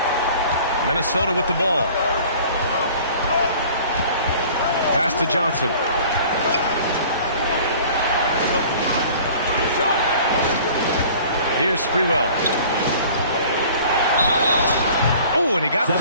Minnesota with the ball. Pass to Johnson. Here's Sprewell. Oh, and he got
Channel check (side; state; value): both; inverted; correlation -0.48